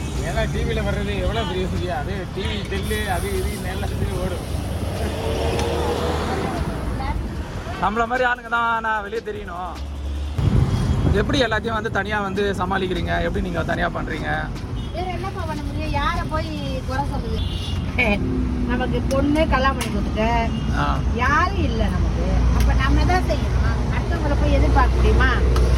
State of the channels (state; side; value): identical; both; correlation 1.00